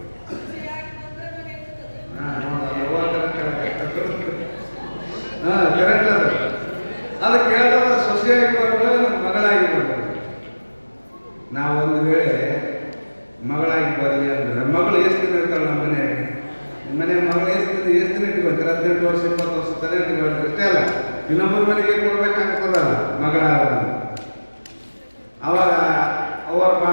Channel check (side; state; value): both; inverted; correlation -1.00